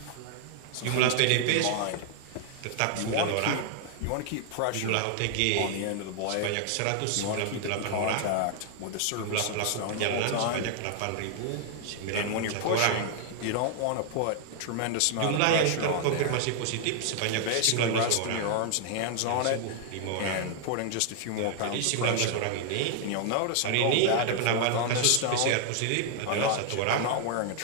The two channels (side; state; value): both; different; correlation 0.00